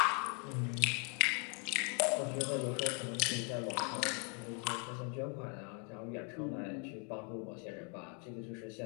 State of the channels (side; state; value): right; quieter; 37.8 dB